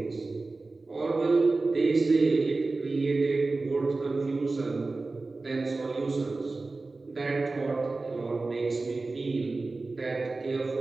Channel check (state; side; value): quieter; left; 3.5 dB